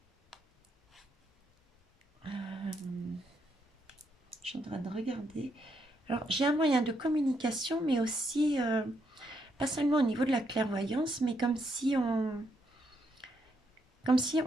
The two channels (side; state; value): both; normal; correlation 0.77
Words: je suis en train de regarder. Alors, j'ai un moyen de communication, mais aussi, pas seulement au niveau de la clairvoyance, mais comme si on